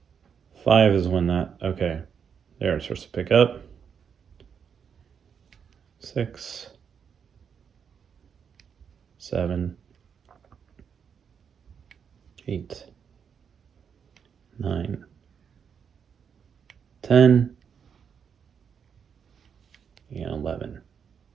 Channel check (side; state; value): left; quieter; 7.1 dB